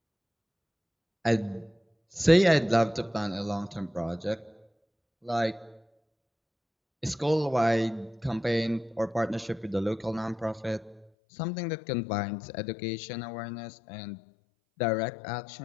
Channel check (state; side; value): drops out; right; at 11.1 s